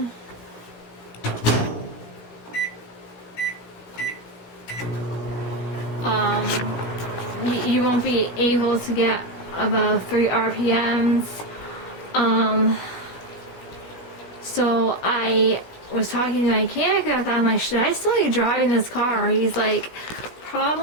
You won't be able to get above 3 RPMs. So I was talking to my mechanic about that. I'm like, should I still be driving this car? He's like,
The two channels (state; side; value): late; right; 17 ms